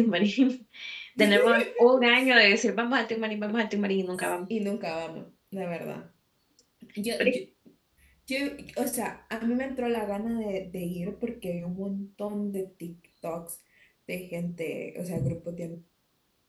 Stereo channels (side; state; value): both; identical; correlation 1.00